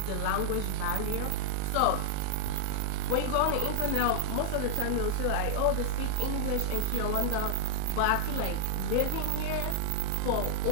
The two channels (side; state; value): both; different; correlation 0.00